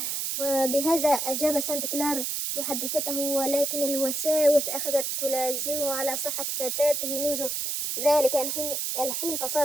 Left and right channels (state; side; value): noise; right; hiss, 1 dB below the sound